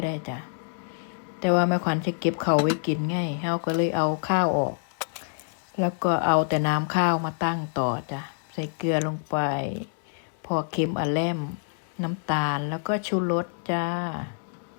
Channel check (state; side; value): silent; right; 60 dB below the other